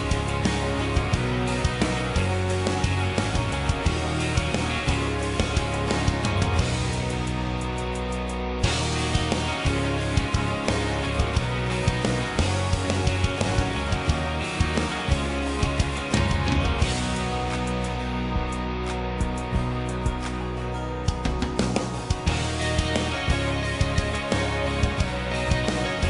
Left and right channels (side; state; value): both; identical; correlation 1.00